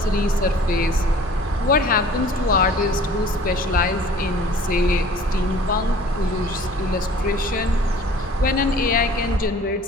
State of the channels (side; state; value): both; normal; correlation 0.49